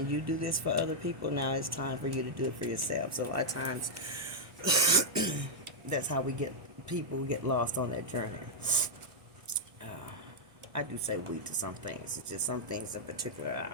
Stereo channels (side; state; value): left; late; 1.1 ms